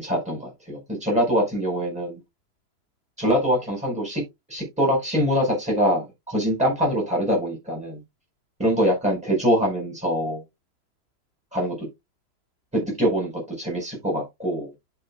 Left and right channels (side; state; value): right; late; 3.0 ms